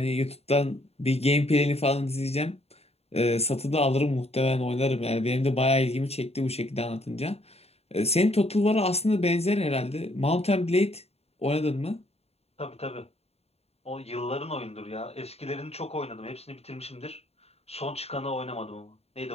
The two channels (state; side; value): late; right; 0.30 ms